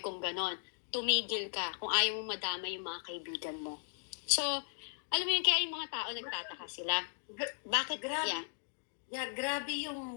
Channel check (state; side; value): silent; right; digital silence